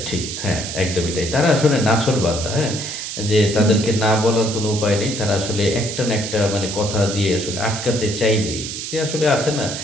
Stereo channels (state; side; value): noise; right; hiss, 6 dB below the sound